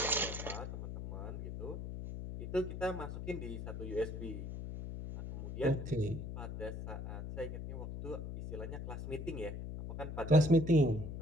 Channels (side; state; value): left; noise; hum, 7 dB below the sound